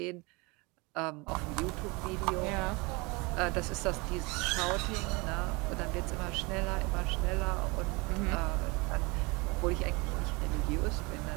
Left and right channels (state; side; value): quieter; left; 26.9 dB